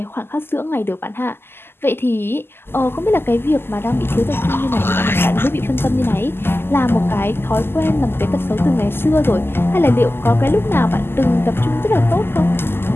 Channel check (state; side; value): late; right; 0.11 ms